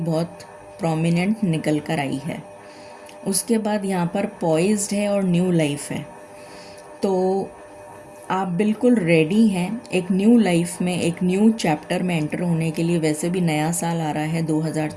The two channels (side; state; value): both; identical; correlation 1.00